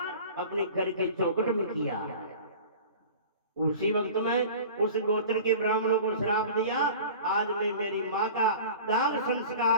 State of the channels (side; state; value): both; inverted; correlation -0.40